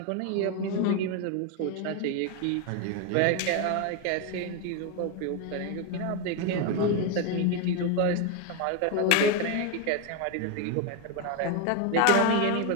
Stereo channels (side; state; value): both; different; correlation 0.02